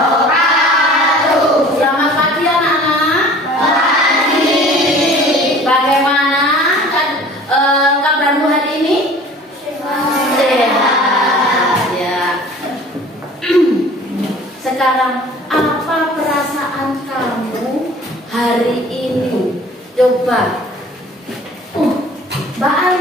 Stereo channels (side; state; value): both; normal; correlation 0.47